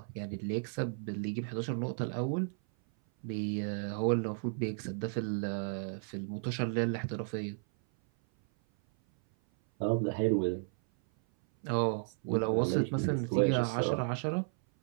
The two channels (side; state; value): left; silent; 55 dB below the other